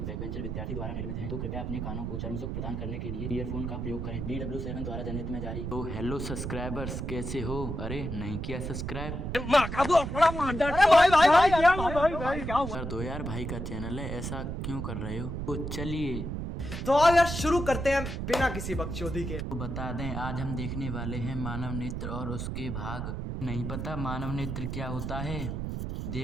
बैकबेंचर विद्यार्थी द्वारा निर्मित हैं, तो कृपया अपने कानों को चर्म सुख प्रदान करने के लिए ईयरफोन का प्रयोग करें। DW7 द्वारा जनहित में जारी। तो हेलो सब्सक्राइबर्स, कैसे हो? अरे नहीं किया सब्सक्राइब? कर दो यार, भाई का चैनल है, ऐसा क्यों कर रहे हो? तो चलिए तो आओ यार शुरू करते हैं बिना किसी बकचोदी के। तो बता दें, आज हम देखने वाले हैं मानव नेत्र और उसके भाग। नहीं पता मानव नेत्र क्या होता है?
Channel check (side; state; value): right; noise; rumble, 4 dB below the sound